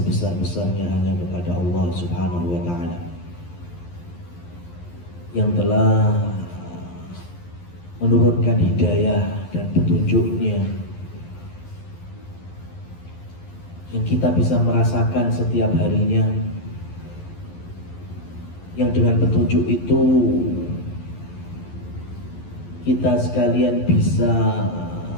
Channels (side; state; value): right; late; 11 ms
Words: hanya kepada Allah Subhanahu wa Ta'ala yang telah menurunkan hidayah dan petunjuknya, yang kita bisa merasakan setiap harinya, yang dengan petunjuk itu kita sekalian bisa